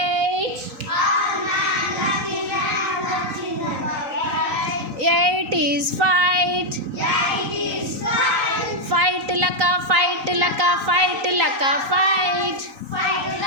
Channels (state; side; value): late; left; 3.9 ms